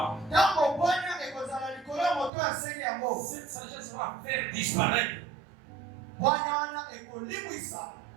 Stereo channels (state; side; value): drops out; left; at 2.3 s